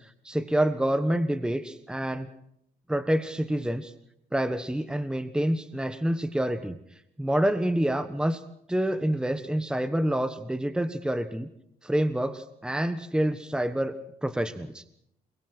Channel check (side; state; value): both; normal; correlation 0.96